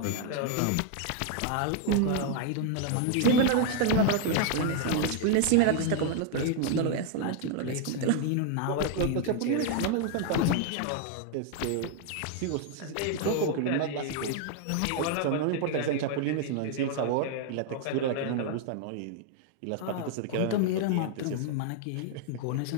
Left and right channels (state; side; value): different; both; correlation 0.00